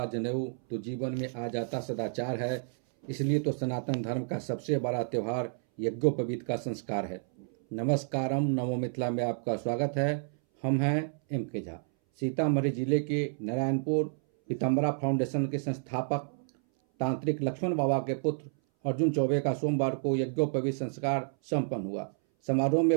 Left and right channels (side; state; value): left; silent; 58 dB below the other